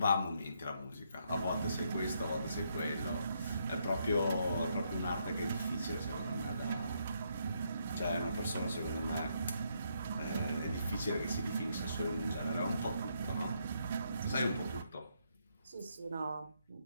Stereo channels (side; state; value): both; inverted; correlation -0.75